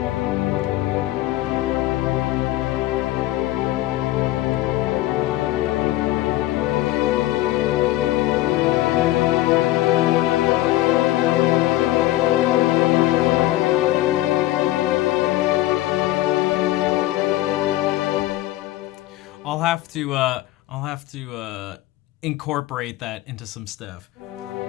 I'll have to incorporate that into some stuff.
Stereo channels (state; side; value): quieter; right; 16.3 dB